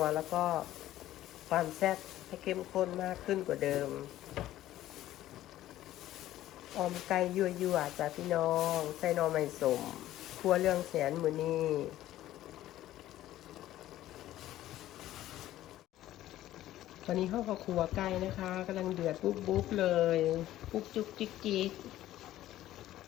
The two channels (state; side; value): quieter; right; 14.0 dB